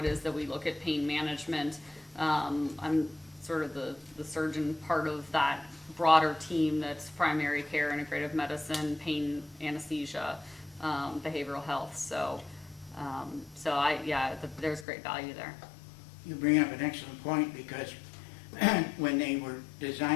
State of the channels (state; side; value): drops out; right; at 14.9 s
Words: is that we look at pain management. I'm sort of the surgeon part of that broader team that's primary care, integrative medicine, pain, anesthesia, behavioral health. So there's great value there. You bring up an excellent point because when they were